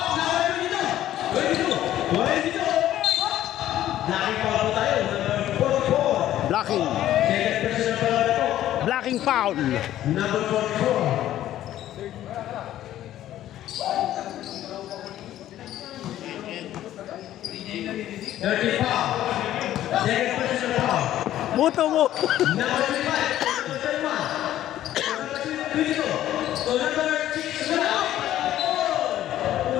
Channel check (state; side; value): quieter; right; 12.8 dB